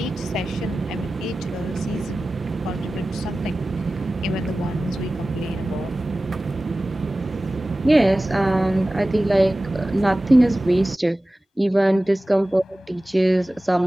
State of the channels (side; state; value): both; normal; correlation 0.96